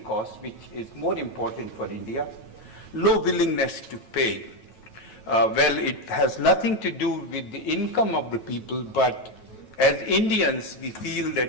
cost, which is more important for India. Low willingness to pay. Well, it has nothing to do with the income of the people, but as Indians, we feel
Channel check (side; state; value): right; late; 9.2 ms